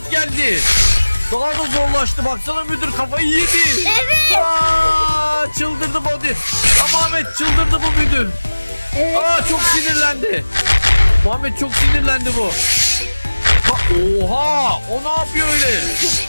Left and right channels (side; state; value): both; inverted; correlation -1.00